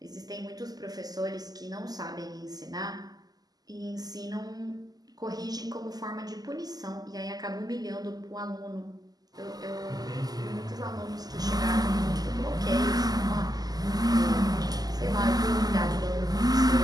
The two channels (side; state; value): left; late; 0.18 ms